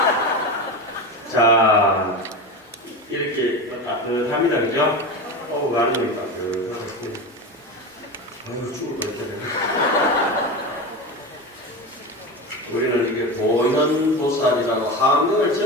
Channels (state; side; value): normal; both; correlation 0.24